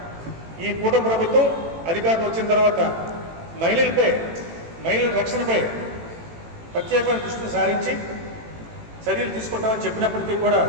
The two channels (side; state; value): left; late; 18 ms